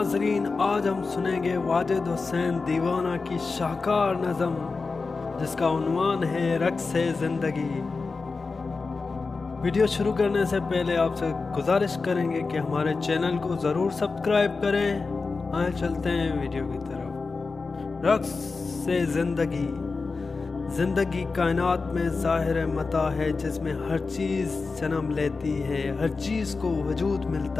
आज हम सुनेंगे वाजिद हुसैन दीवाना की शाहकार नज़म जिसका उन्वान है रक्स ज़िंदगी। वीडियो शुरू करने से पहले आपसे गुजारिश करेंगे कि हमारे चैनल को ज़रूर सब्सक्राइब करें। आए चलते हैं वीडियो की तरफ। रक्स ज़िंदगी। ज़िंदगी कायनात में ज़ाहिर मता है जिसमें हर चीज़ जन्म लेती है, हर चीज़ को वजूद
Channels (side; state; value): right; quieter; 4.2 dB